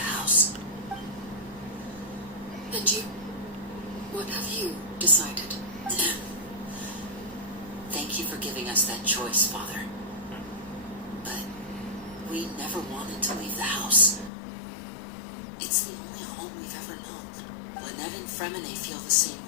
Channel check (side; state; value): right; drops out; at 14.3 s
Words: house. And you? What have you decided? Thank you for giving us that choice, Father. But we never wanted to leave the house. It's the only home we've ever known. Lynette and Fremine feel the same